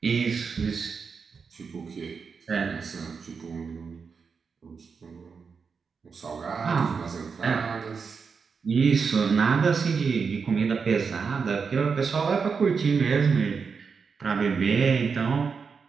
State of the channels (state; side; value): quieter; left; 5.5 dB